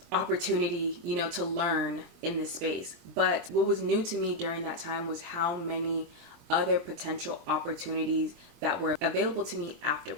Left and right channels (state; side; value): late; left; 23 ms